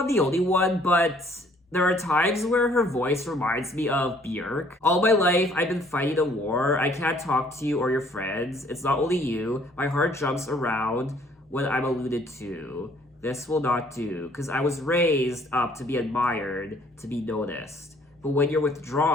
the only one, but there are times where her voice reminds me of Björk. All my life, I've been fighting a war. I can't talk to you or your friends. It's not only you. My heart jumps around when I'm alluded to. This will not do, because I was raised up to be admired, to be noticed. But when you're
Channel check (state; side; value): normal; both; correlation 0.60